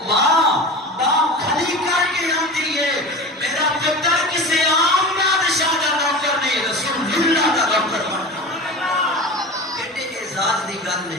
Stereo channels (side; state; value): both; normal; correlation 0.32